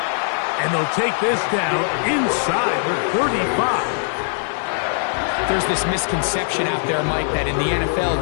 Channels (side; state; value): right; silent; 65 dB below the other